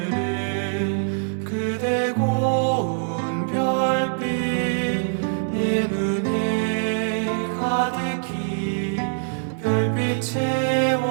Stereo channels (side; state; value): left; silent; digital silence